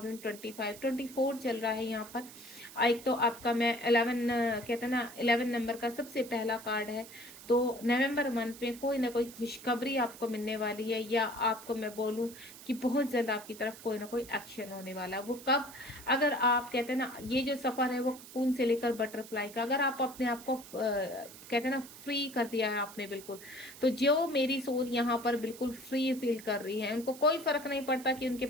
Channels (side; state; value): right; noise; hiss, 16 dB below the sound